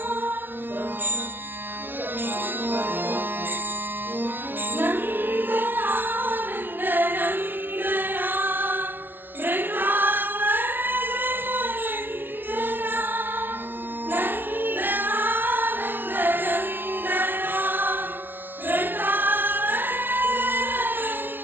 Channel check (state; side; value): late; left; 0.099 ms